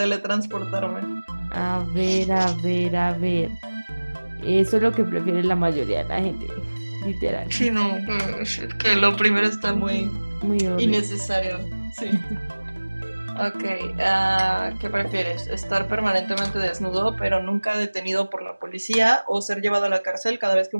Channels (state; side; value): inverted; both; correlation -1.00